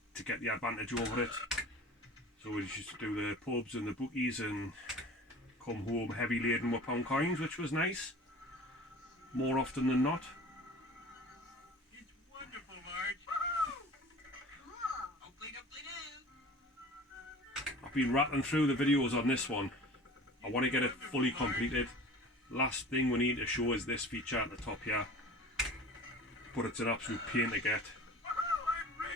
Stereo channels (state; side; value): normal; both; correlation 0.41